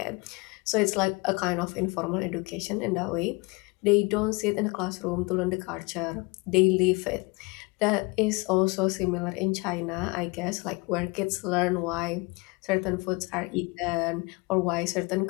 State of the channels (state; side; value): quieter; right; 26.8 dB